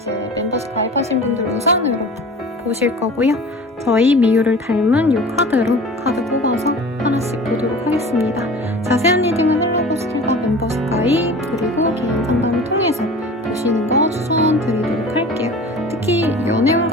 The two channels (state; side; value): normal; both; correlation 0.39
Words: 멤버십 가입하신 분들 우선으로 보실 거고요. 저희 미유를 닮은 이 카드로 카드 뽑아서 하나씩 보도록 하겠습니다. 자세한 리딩은 헬로보스킬과 멤버십 가입 그리고 개인 상담을 통해서 보시는 거 추천드리도록 할게요. 특히 연애운